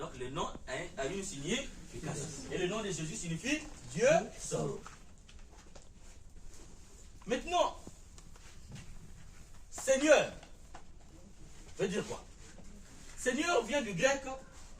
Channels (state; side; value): identical; both; correlation 1.00